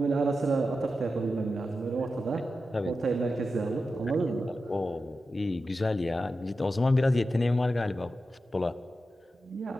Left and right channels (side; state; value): both; normal; correlation 0.91